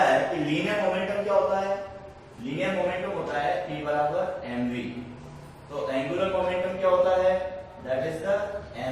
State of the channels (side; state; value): both; identical; correlation 1.00